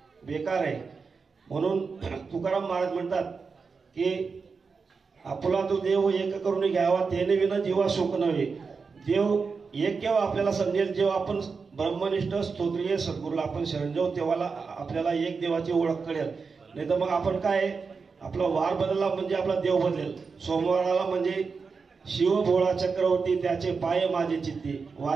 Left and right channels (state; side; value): quieter; left; 5.0 dB